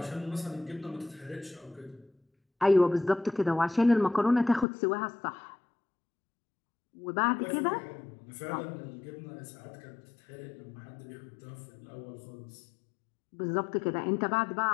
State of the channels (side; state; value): right; drops out; at 4.7 s